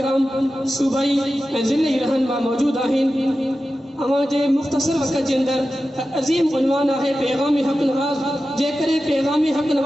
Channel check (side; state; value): both; normal; correlation 0.93